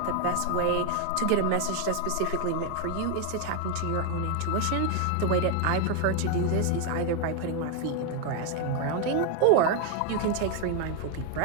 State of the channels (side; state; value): both; different; correlation 0.01